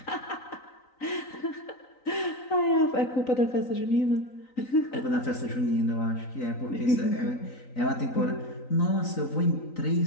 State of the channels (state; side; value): late; right; 3.9 ms